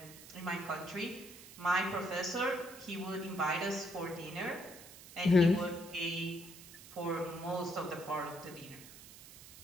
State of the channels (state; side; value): noise; right; hiss, 17 dB below the sound